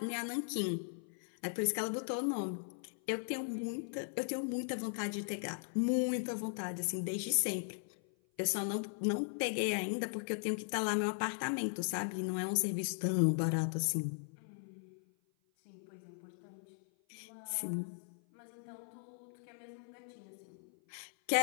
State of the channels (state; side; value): silent; right; 52 dB below the other